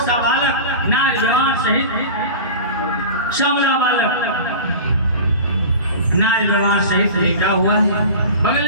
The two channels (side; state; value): both; inverted; correlation -0.34